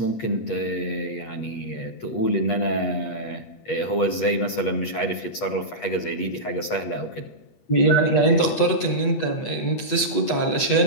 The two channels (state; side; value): late; right; 8.3 ms